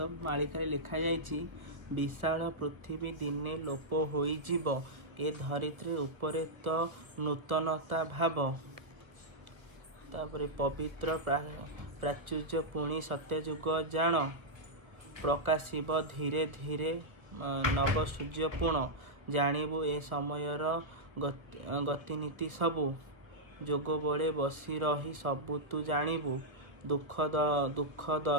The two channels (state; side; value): late; left; 1.2 ms